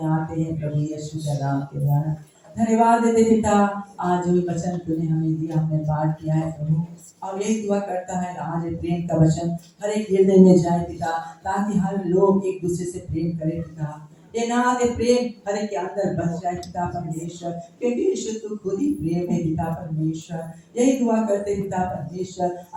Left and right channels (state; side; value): identical; both; correlation 1.00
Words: आते हैं प्रभु यीशु के नाम के द्वारा। धन्यवाद देते पिता, आज जो वचन तूने हमें दिया, हमने पाठ किया है प्रभु, और यही दुआ करता है आज प्रेम का वचन हर एक हृदय में जाए पिता, ताकि हर लोग एक दूसरे से प्रेम करें पिता। ये नाथ ये प्रेम हर एक के अंदर बस जाए पिता परमेश्वर, क्योंकि यीशु तू खुद ही प्रेम है पिता परमेश्वर। यही दुआ करते पिता परमेश्वर,